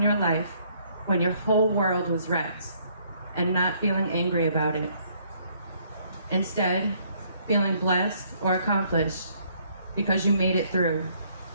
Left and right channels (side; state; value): both; inverted; correlation -0.66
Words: your life when your whole world was wrecked and not feeling angry about it. Instead, feeling blessed or accomplished because you made it through.